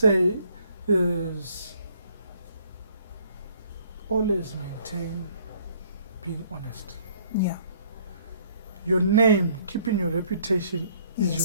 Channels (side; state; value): both; inverted; correlation -0.62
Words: is always maintain being honest. Yeah. Your name, keeping your reputation is Yes.